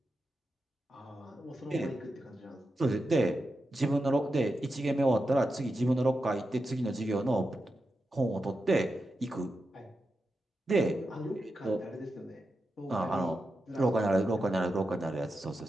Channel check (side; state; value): both; normal; correlation 0.89